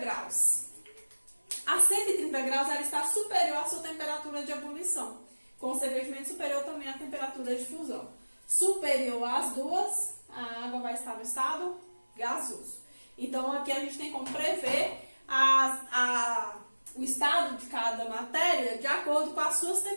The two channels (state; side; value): inverted; both; correlation -1.00